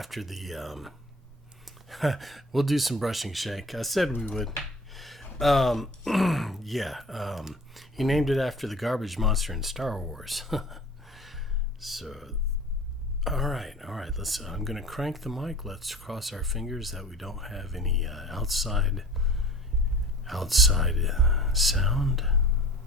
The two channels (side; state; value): both; normal; correlation 0.44